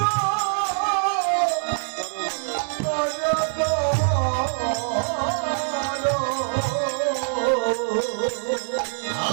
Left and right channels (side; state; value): left; silent; 58 dB below the other